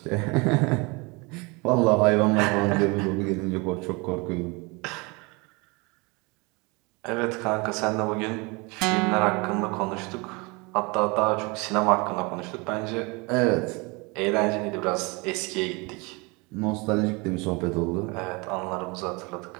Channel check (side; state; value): left; quieter; 27.7 dB